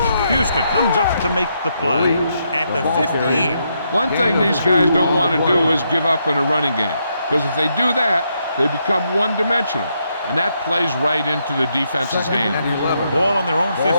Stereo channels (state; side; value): inverted; both; correlation -0.78